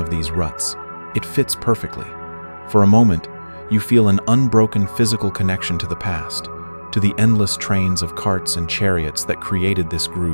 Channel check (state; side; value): inverted; both; correlation -1.00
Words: of these ruts. It fits perfectly. For a moment, you feel an unbroken physical connection to the past, to the endless trains of carts and chariots that created this